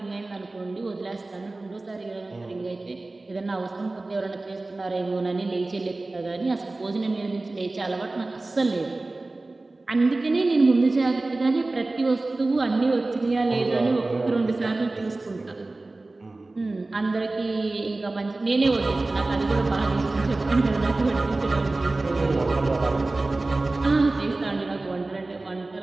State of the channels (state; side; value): quieter; left; 3.1 dB